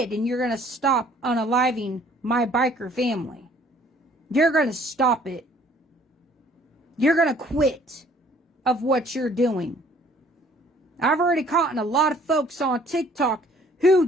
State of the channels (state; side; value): normal; both; correlation 0.58